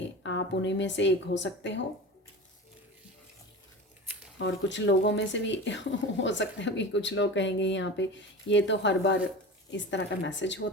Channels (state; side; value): normal; both; correlation 0.31